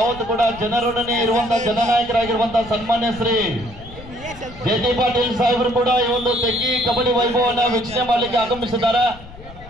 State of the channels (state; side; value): noise; left; rumble, 18 dB below the sound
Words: ಕೂಡ ಜನರೊಡನೆ ಇರುವಂತಹ ಜನನಾಯಕರಾಗಿರುವಂತಹ ಸನ್ಮಾನ್ಯ ಶ್ರೀ ಜೆ.ಟಿ. ಪಾಟೀಲ್ ಸಾಹೇಬರು ಕೂಡ ಈ ಒಂದು ತೆಗ್ಗಿ ಕಬಡ್ಡಿ ವೈಭವವನ್ನು ವೀಕ್ಷಣೆ ಮಾಡಲಿಕ್ಕೆ ಆಗಮಿಸಿದ್ದಾರೆ.